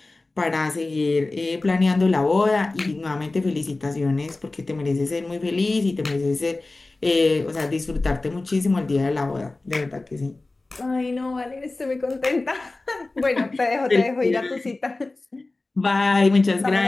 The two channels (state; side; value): quieter; right; 3.2 dB